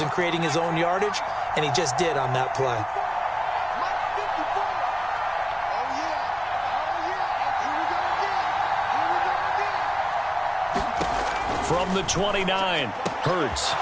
and creating his own yardage, and he just did on that play. From the 29, Hurts.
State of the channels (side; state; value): both; identical; correlation 1.00